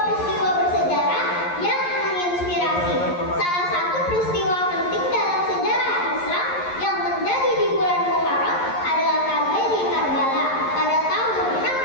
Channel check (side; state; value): right; late; 11 ms